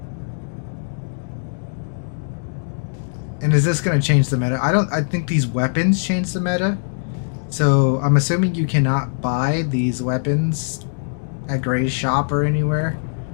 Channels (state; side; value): silent; right; digital silence